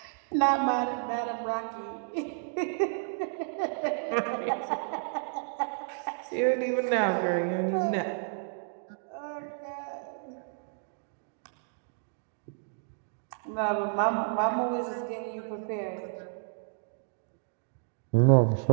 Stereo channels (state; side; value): silent; left; digital silence